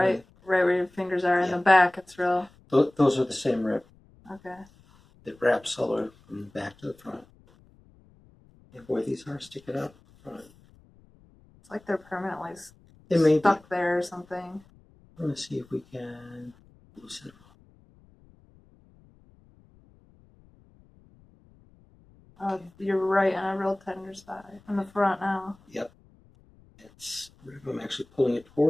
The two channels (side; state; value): left; noise; rumble, 28 dB below the sound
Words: where your fingers are in Yeah. the back. It's real. Those are the same rib. Okay. It wraps all the way from the back to the front. And boy, these are sticking up front. It's like they're permanently They may stuck there or something. We're going to see if we can loosen them up. Oh, you're right on a real tender spot in the front now. Yep. I'm actually pulling it